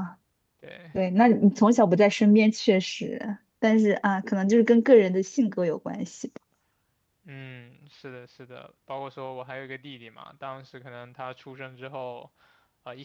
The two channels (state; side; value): identical; both; correlation 1.00